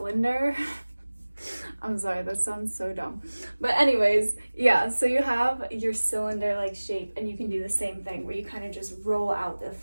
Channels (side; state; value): both; inverted; correlation -1.00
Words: I'm sorry, that sounds so dumb. But anyways, yeah, so you have your cylinder-like shape, and you can do the same thing where you kind of just roll out the